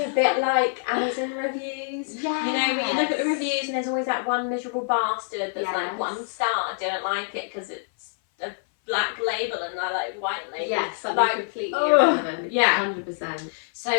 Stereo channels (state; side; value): silent; right; 59 dB below the other